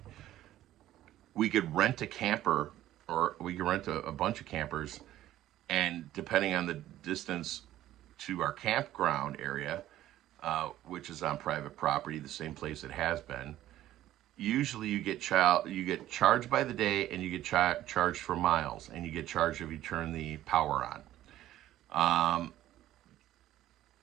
We could rent a camper, or we could rent a bunch of campers, and depending on the distance to our campground area, which is on private property, the same place it has been, usually you get charged by the day, and you get charged for miles, and you get charged if you turn the power on.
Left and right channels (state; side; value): quieter; left; 13.7 dB